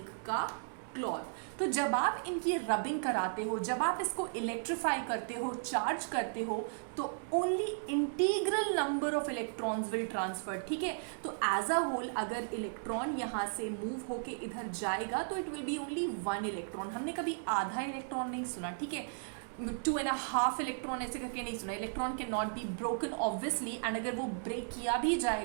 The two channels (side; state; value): left; silent; digital silence